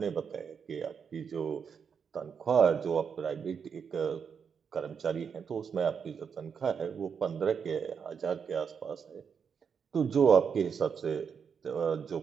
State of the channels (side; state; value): left; quieter; 6.7 dB